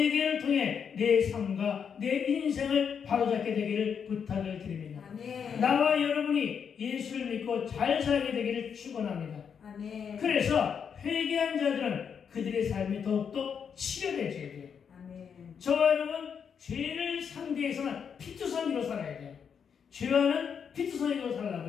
통해 내 삶과 내 인생을 바로잡게 되기를 부탁을 드립니다. 아멘. 나와 여러분이 예수를 믿고 잘 살게 되기를 축원합니다. 아멘. 그래서 회개한 자들은 그들의 삶이 더욱더 치료되어야 돼요. 아멘. 저와 여러분, 죄를 상대해서는 피투성이로 살아야 돼요. 죄와는 피투성이로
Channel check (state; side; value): quieter; right; 7.1 dB